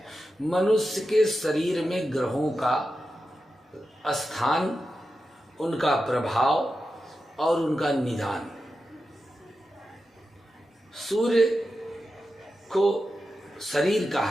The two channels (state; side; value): normal; both; correlation 0.90